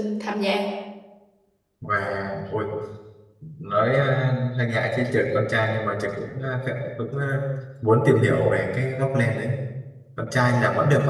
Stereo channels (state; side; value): identical; both; correlation 1.00